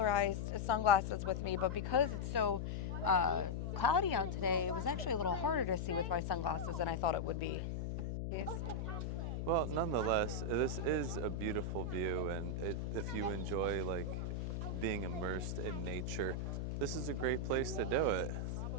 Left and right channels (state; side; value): noise; left; hum, 2 dB below the sound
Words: sunglasses with me, but because it's so cloudy out today, it was actually a little harder to see with my sunglasses than I thought it would be. Yes. Well, nonetheless, this is a beautiful view, and if you enjoy like being immersed in nature, this is a great place to do it.